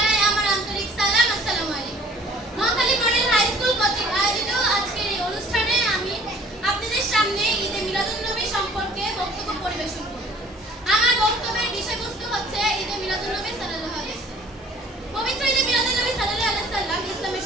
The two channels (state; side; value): normal; both; correlation 0.53